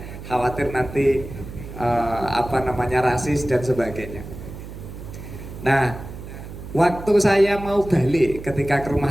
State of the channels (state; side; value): noise; right; hum, 12 dB below the sound